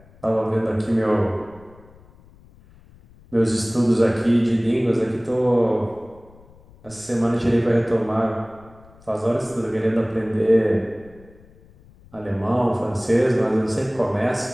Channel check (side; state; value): left; noise; rumble, 25 dB below the sound